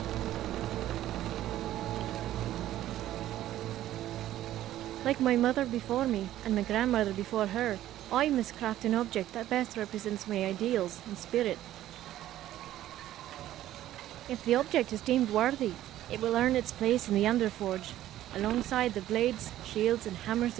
Like my mother before me, and my grandmother before her, I must craft an object that best represents my ideals and spirit. If the object is deemed worthy, it will earn its place in the Underforge, alongside the blades, shields and hammers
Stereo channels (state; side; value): quieter; left; 13.4 dB